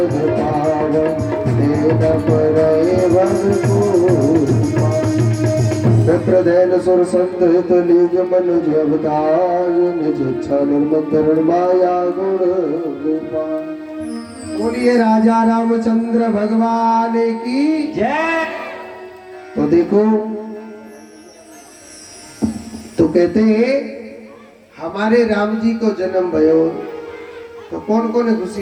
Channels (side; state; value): both; identical; correlation 1.00